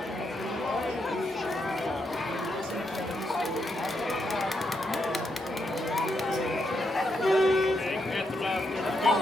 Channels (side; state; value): both; normal; correlation 0.81